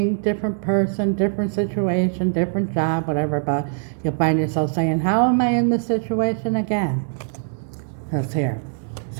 different person, different situation, different job, whatever, but you'll find yourself saying, how am I in this situation again? That's here.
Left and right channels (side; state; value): left; silent; 64 dB below the other